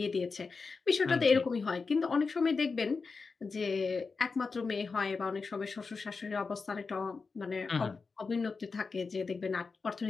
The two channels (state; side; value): quieter; right; 4.6 dB